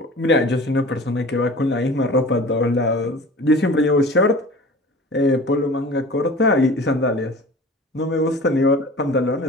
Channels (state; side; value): normal; both; correlation 0.41